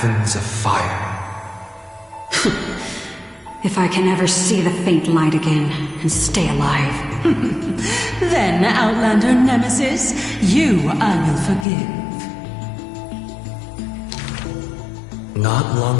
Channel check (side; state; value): right; drops out; at 11.7 s